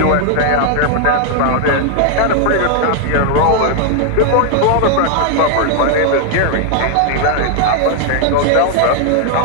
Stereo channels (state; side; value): different; both; correlation 0.00